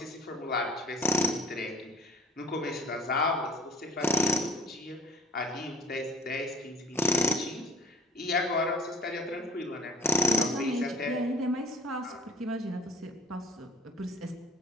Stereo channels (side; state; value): both; normal; correlation 0.47